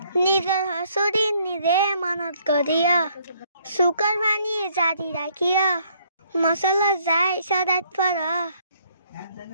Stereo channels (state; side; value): inverted; both; correlation -0.66